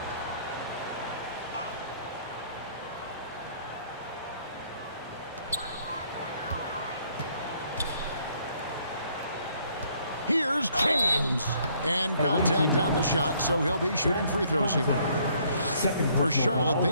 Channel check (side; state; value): both; inverted; correlation -0.65